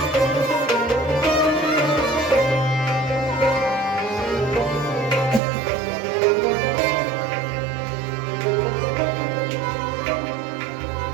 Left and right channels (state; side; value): drops out; left; at 5.4 s